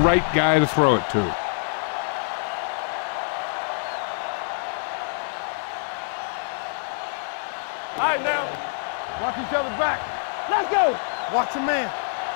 guy to throw it to. All right, now. Watch each other back. Let's go. Watch your man.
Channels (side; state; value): right; silent; digital silence